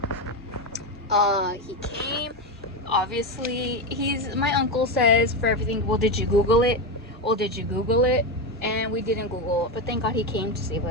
he came. Obviously, my uncle says for everything, well, did you Google it? And we didn't Google it, but thank God he came to save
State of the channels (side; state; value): both; normal; correlation 0.13